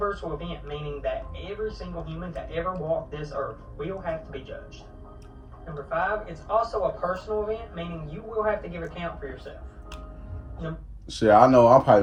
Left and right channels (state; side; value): identical; both; correlation 1.00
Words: event, meaning that every single human to ever walk this earth will have to be judged. Number 5, it's also a personal event, meaning you will have to give account for yourself. Shit, I know. I'm